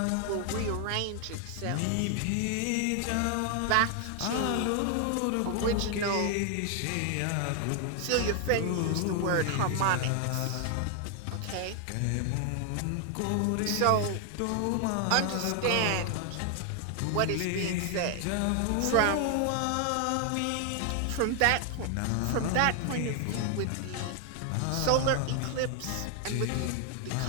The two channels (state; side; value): different; both; correlation 0.00